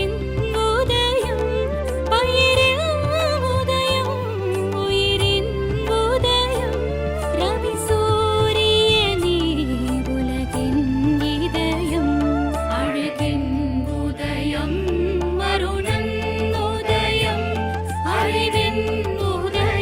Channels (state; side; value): identical; both; correlation 1.00